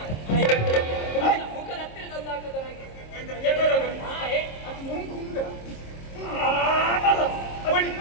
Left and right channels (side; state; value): right; late; 26 ms